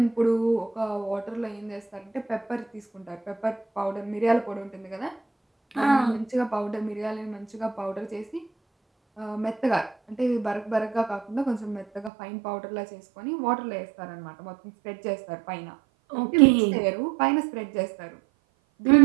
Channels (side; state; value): left; drops out; at 12.1 s